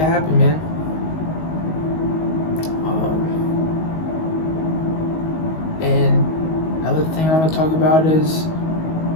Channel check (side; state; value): right; late; 19 ms